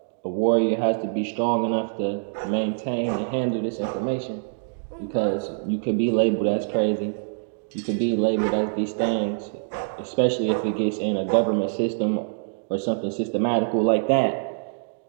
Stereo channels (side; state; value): left; silent; digital silence